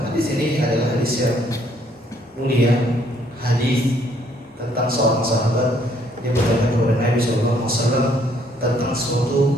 hadis ini adalah hadis yang mulia, hadis tentang seorang sahabat dia bertanya kepada Nabi sallallahu alaihi wasallam tentang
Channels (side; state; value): both; normal; correlation 0.66